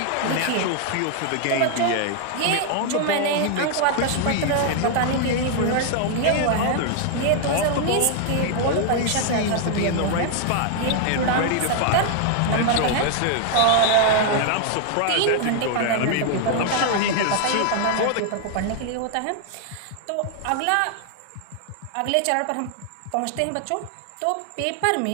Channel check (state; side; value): different; both; correlation 0.00